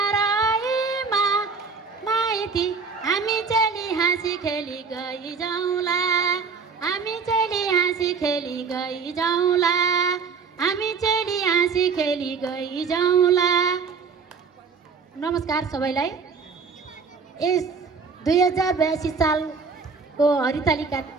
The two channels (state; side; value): quieter; left; 5.3 dB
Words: माइती हामी चली हाँसी खेली गई जाउँला हामी चली हाँसी खेली गई जाउँला हामी चली हाँसी खेली गई जाउँला। नमस्कार सबैलाई। यस 2082 सालको हरितालिका